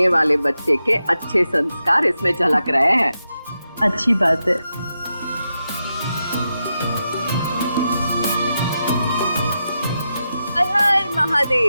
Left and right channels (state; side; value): inverted; both; correlation -0.87